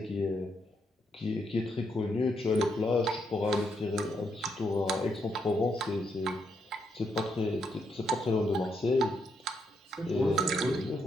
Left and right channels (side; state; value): both; normal; correlation 0.78